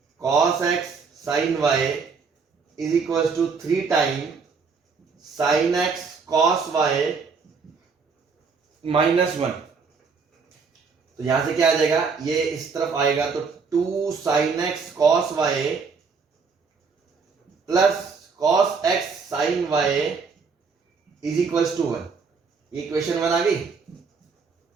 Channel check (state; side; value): quieter; left; 5.1 dB